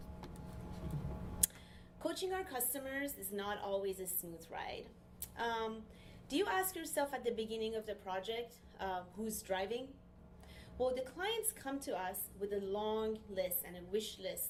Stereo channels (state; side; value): identical; both; correlation 1.00